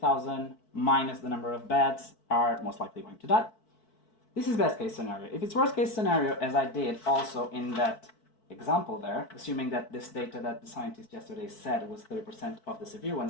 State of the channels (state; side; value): late; right; 4.6 ms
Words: minus the number of beds are most likely going to die. This is best case scenario. If it's worst case scenario, as I did also in that example there, assuming that this data that the scientist yesterday said was 30% of the severe